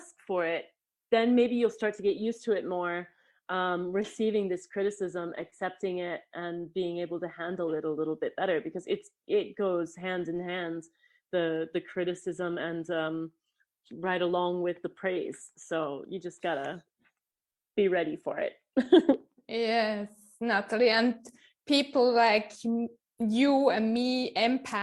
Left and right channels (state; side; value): identical; both; correlation 1.00